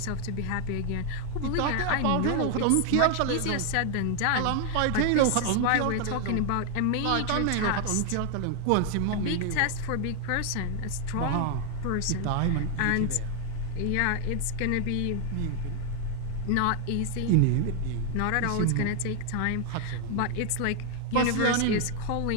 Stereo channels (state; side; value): different; both; correlation 0.00